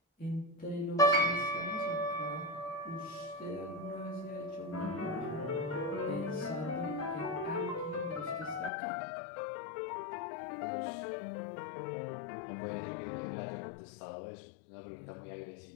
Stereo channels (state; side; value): drops out; right; at 8.7 s